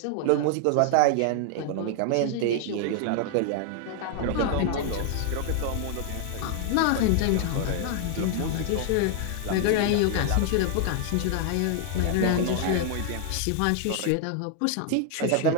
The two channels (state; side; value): different; both; correlation 0.00